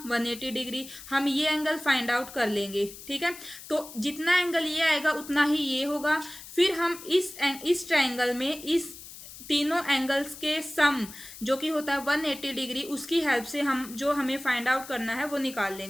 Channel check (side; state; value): left; noise; hiss, 15 dB below the sound